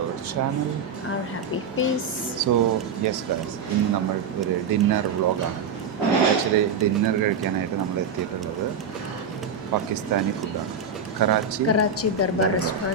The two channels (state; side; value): quieter; left; 5.4 dB